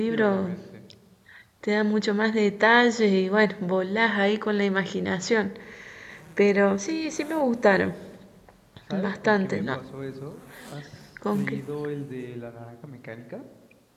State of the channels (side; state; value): both; identical; correlation 1.00